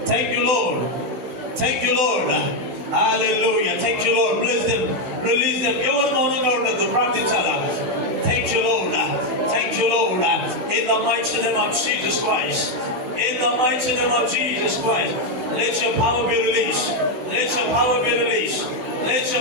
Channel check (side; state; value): left; late; 16 ms